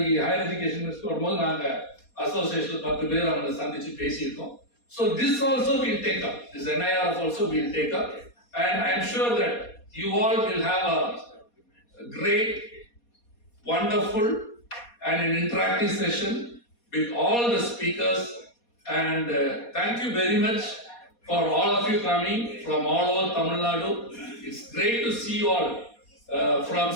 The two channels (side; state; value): right; late; 4.2 ms